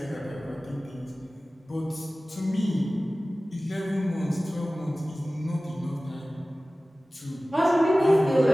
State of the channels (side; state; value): both; normal; correlation 0.97